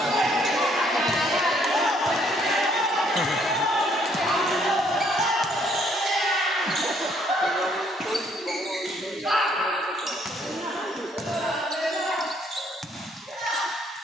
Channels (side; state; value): both; normal; correlation 0.66